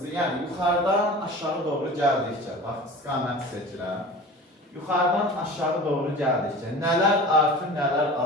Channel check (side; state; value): both; normal; correlation 0.38